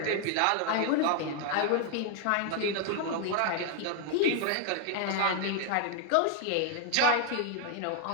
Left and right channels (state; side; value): different; both; correlation 0.00